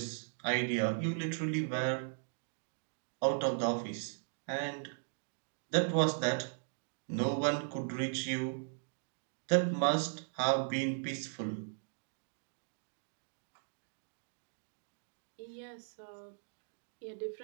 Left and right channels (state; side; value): silent; left; digital silence